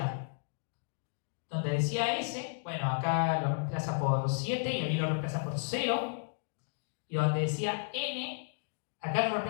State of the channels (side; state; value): right; silent; digital silence